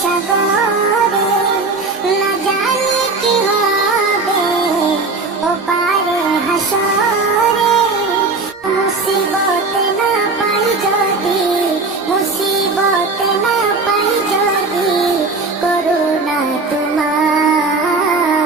সাগরে, না জানি কি হবে ও পারে হাসরে। মুসিবত না পাই যদি, মুসিবত না পাই যদি, করুণা তোমার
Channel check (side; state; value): left; quieter; 3.8 dB